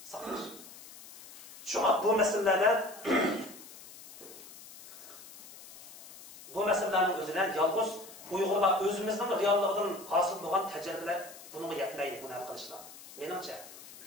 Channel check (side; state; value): left; noise; hiss, 17 dB below the sound